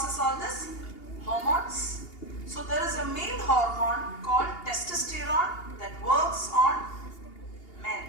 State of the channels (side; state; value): right; late; 2.8 ms